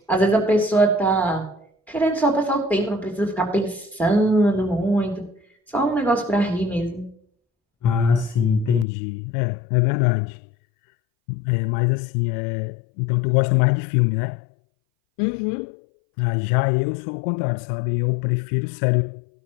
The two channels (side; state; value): right; drops out; at 8.8 s